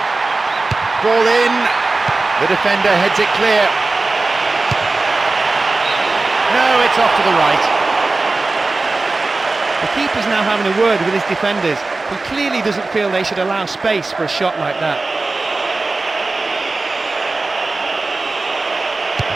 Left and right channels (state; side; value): quieter; left; 3.4 dB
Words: Ball in. The defender heads it clear. No, it's off to the right. The keeper's now having a word with his defenders. He clearly doesn't feel they should allow space for a shot like that.